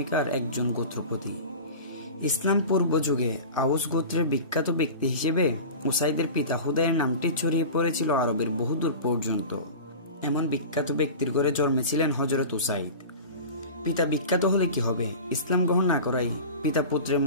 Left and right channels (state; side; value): inverted; both; correlation -0.34